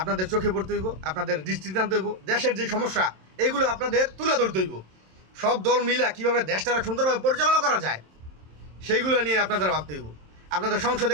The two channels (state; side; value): late; left; 27 ms